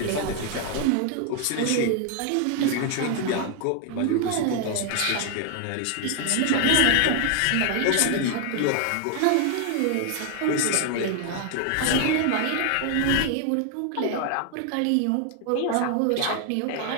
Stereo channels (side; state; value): both; different; correlation 0.00